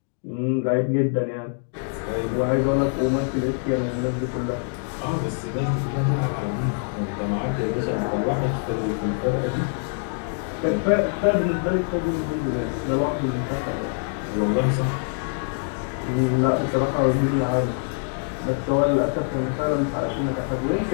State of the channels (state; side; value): silent; right; 62 dB below the other